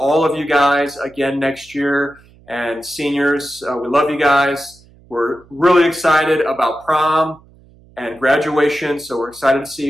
of you guys again next year. And seniors, we love you guys. We're really excited about prom and graduation. So we're excited to see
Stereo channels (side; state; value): right; noise; hum, 27 dB below the sound